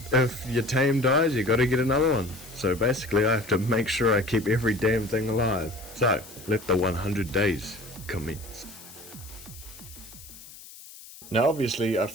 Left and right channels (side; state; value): left; noise; hiss, 18 dB below the sound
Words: If your tame dies, you gotta get another one. So basically I have to make sure I keep every damn thing alive. So, let the 100 days commence. Now obviously I